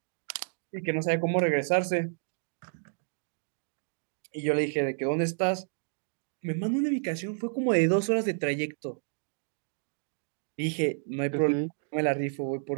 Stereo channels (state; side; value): silent; left; 57 dB below the other